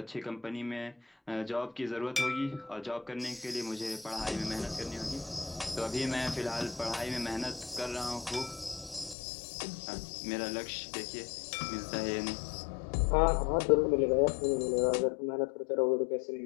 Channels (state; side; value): drops out; right; at 9.2 s